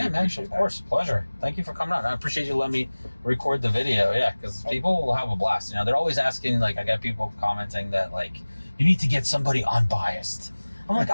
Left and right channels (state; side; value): inverted; both; correlation -1.00